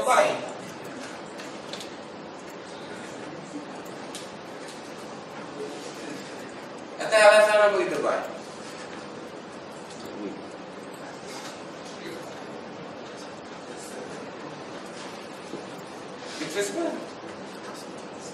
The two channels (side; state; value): both; identical; correlation 1.00